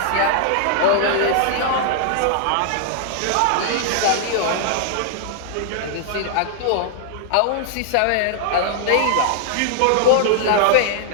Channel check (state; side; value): different; both; correlation -0.01